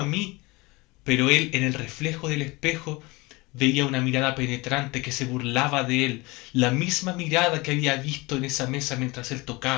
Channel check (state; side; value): quieter; right; 23.8 dB